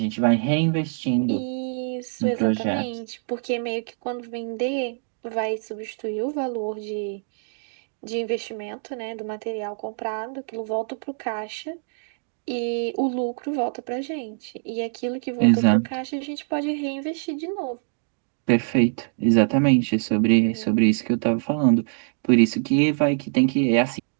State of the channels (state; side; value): silent; left; 62 dB below the other